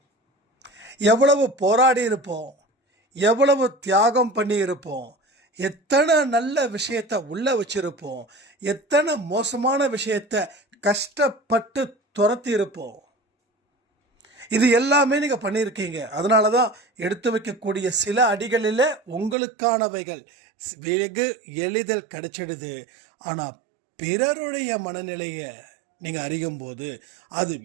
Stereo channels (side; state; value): left; drops out; at 19.4 s